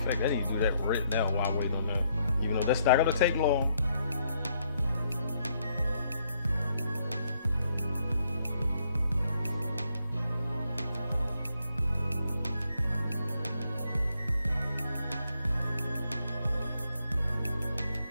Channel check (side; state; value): both; inverted; correlation -0.73